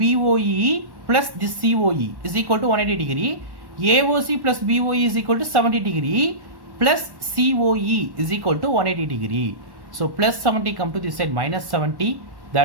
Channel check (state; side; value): late; left; 1.1 ms